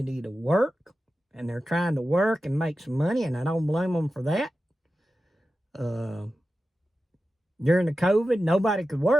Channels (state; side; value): normal; both; correlation 0.93